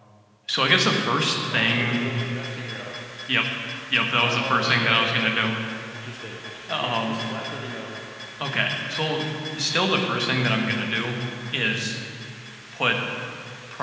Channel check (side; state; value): both; identical; correlation 1.00